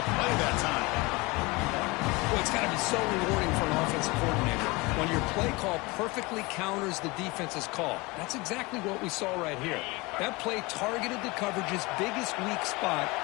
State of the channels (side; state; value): right; quieter; 24.4 dB